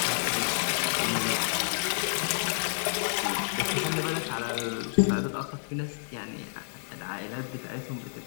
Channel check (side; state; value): right; silent; digital silence